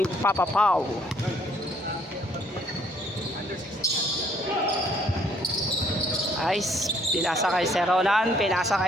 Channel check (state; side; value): normal; both; correlation 0.65